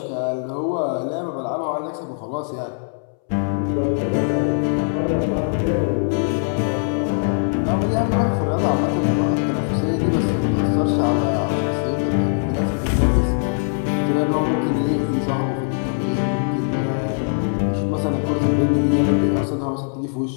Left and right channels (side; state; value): right; silent; 65 dB below the other